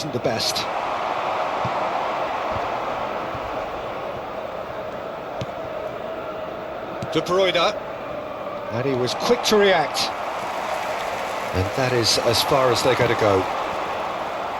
the best. De Bruyne. And he was quick to react. And that is as far as they're going to go.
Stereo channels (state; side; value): identical; both; correlation 1.00